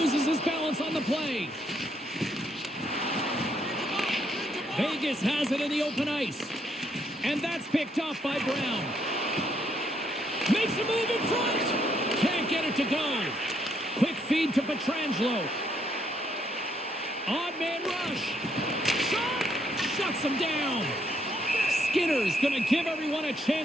his balance on the play. Vegas has it in the open ice. And that's picked up by Brown. Makes a move in front. Can't get it to go. Quick feed to Pietrangelo. Odd man rush. Shot. Shuts him down. Skinner's going to give everyone a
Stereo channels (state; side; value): normal; both; correlation 0.73